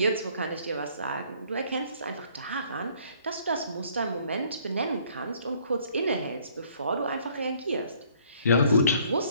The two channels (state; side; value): inverted; both; correlation -0.61